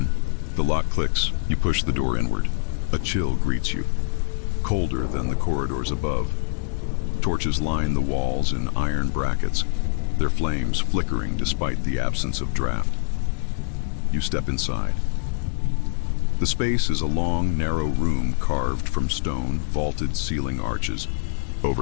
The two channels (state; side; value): silent; right; 62 dB below the other